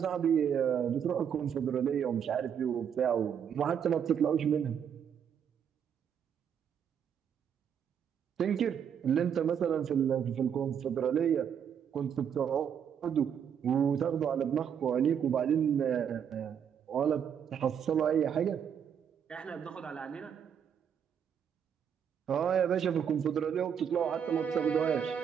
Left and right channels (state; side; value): quieter; left; 8.1 dB